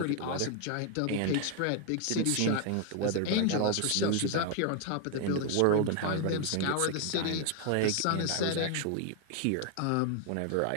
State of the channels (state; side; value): different; both; correlation 0.00